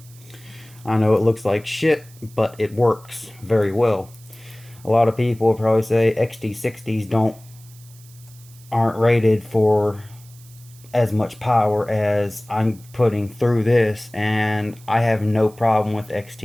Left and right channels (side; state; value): right; noise; hiss, 24 dB below the sound